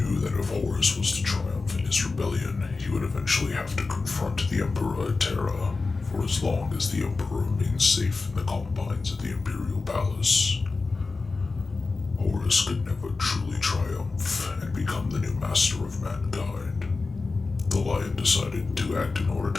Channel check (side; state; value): right; quieter; 3.9 dB